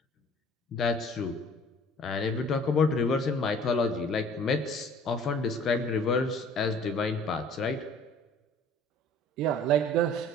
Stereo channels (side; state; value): both; normal; correlation 0.50